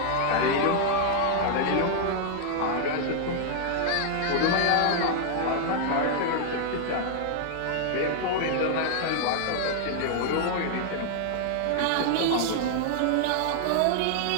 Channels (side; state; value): both; different; correlation 0.00